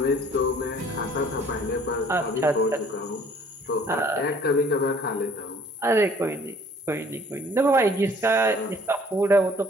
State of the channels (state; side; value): normal; both; correlation 0.55